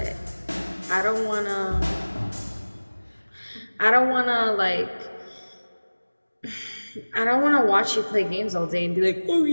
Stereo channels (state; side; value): inverted; both; correlation -1.00